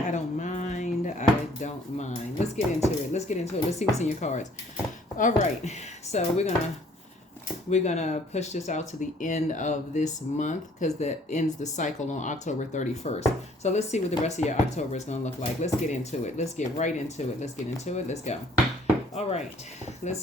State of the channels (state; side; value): normal; both; correlation 0.59